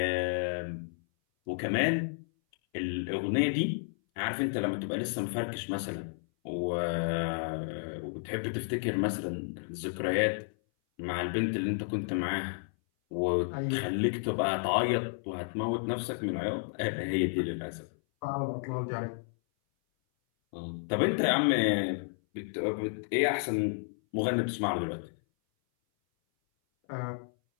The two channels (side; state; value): right; silent; 57 dB below the other